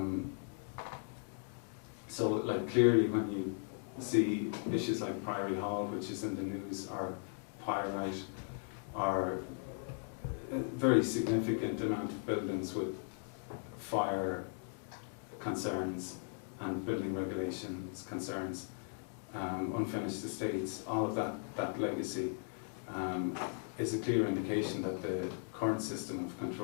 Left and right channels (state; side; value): silent; right; 53 dB below the other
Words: So, like, clearly when you see issues like Priory Hall, which is in the news, or Pyrite, or a very significant amount of buildings with fire concerns and building regulations concerns, unfinished estates, all of that legacy is a clear indication that the current system of